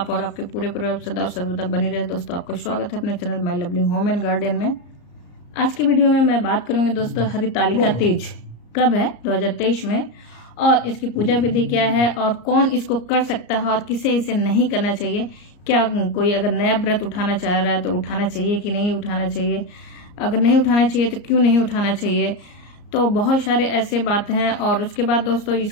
और आपके पूरे परिवार सदा और सर्वदा बनी रहे। दोस्तों, आपका स्वागत है अपने channel my lovely home and garden में। आज की वीडियो में मैं बात करूंगी दोस्तों, हरितालिका तीज कब है 2023 में, और इसकी पूजा विधि क्या है और कौन इसको कर सकता है और किसे इसे नहीं करना चाहिए। क्या कोई अगर नया व्रत उठाना चाह रहा है तो उठाना चाहिए कि नहीं उठाना चाहिए, अगर नहीं उठाना चाहिए तो क्यों नहीं उठाना चाहिए। तो बहुत सारे ऐसे बात हैं। और उसके बाद दोस्तों,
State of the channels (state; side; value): late; right; 34 ms